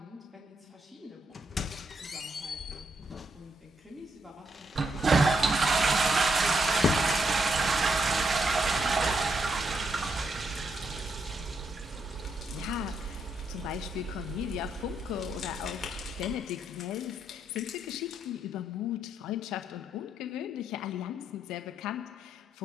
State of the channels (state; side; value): normal; both; correlation 0.78